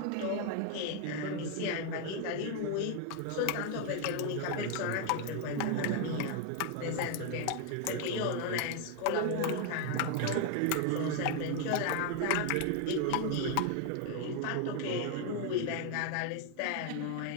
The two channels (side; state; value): both; different; correlation 0.01